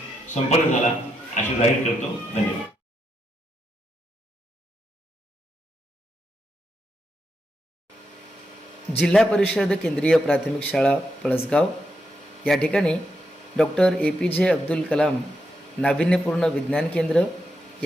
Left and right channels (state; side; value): normal; both; correlation 0.83